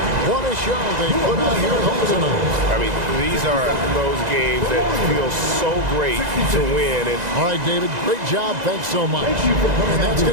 What a show they put on here at home tonight. I mean, these are those games that feel so great to win. And all right, David, great job. Thanks so much. And that's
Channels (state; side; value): late; left; 2.0 ms